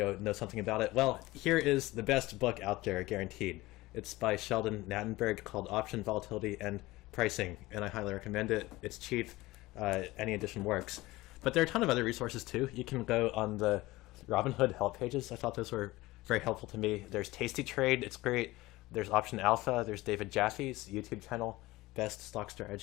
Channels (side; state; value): right; quieter; 19.4 dB